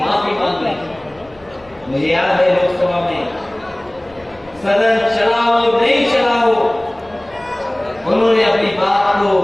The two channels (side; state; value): left; noise; rumble, 28 dB below the sound